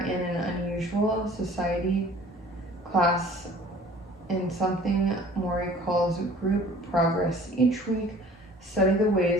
in an unusual society class in something Morrie calls group progress. Each week, study the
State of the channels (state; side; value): normal; both; correlation 0.49